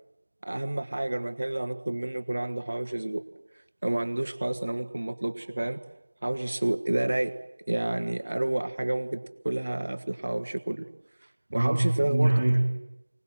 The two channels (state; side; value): inverted; both; correlation -1.00